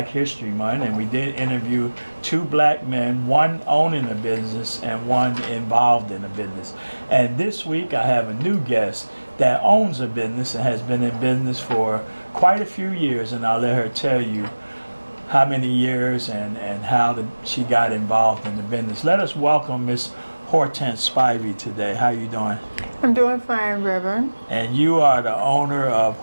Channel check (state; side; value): inverted; both; correlation -1.00